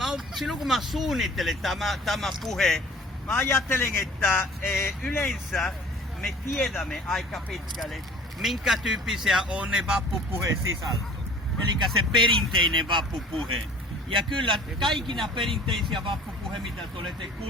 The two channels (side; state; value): both; normal; correlation 0.48